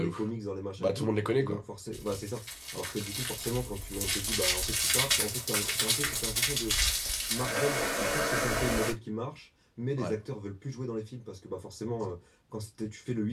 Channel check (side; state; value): both; identical; correlation 1.00